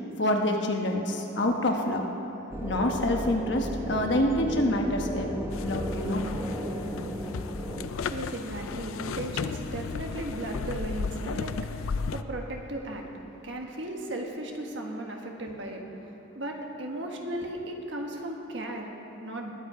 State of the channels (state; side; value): normal; both; correlation 0.41